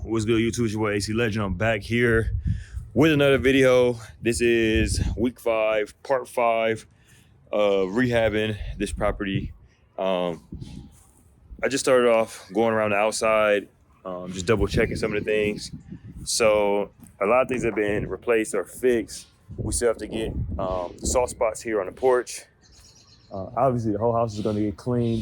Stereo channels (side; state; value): both; identical; correlation 1.00